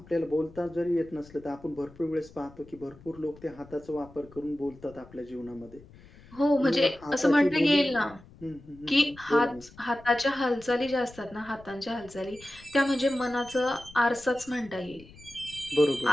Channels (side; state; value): left; noise; rumble, 22 dB below the sound